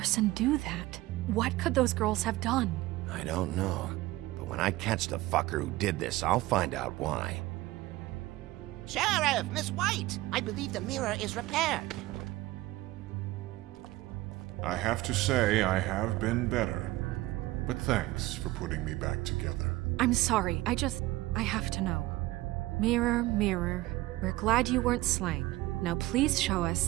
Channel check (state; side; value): quieter; left; 18.1 dB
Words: do that? What could those girls have done? I don't know. But when I catch the fucker who did this, I'll find out why. Sheriff, Miss White! I believe the mirror is repaired. I have to say I have been better. But thanks for putting me back together. I'm sorry, I have to know. Mirror, mirror, we're glad you weren't slain. Now please show